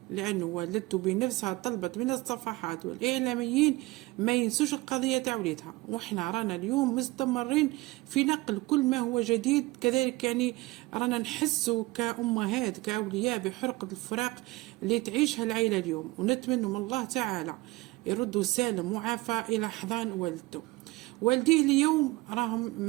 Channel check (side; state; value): left; quieter; 21.3 dB